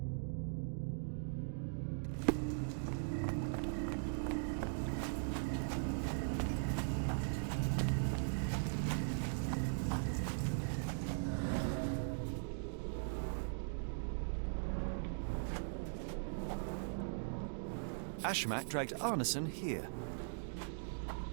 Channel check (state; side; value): silent; left; digital silence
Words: Ashmak dragged Arneson here.